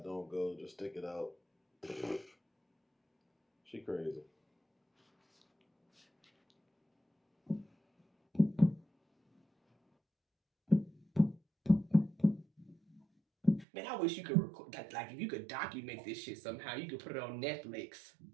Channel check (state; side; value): drops out; left; at 13.7 s